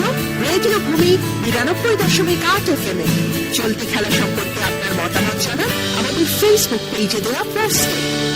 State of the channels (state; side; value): identical; both; correlation 1.00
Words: রেডিও ভূমি 92.8 FM এ। চলতি খেলা সম্পর্কে আপনার মতামত জানান আমাদের ফেসবুক পেজে দেয়া পোস্টে।